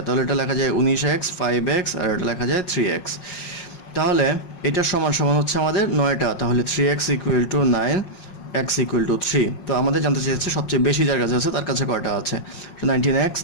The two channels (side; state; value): right; late; 5.5 ms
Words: তাহলে এটা লেখা যায় 19x 5x আর এটা লেখা যায় 3x। তাহলে এটার সমান সমান হচ্ছে আমাদের 9টা, তাহলে 3x equal to 9, x equal to 3। তো আমাদের জানতে চেয়েছে সবচেয়ে বেশি যার কাছে আছে তার কাছে কয়টা আছে, 19x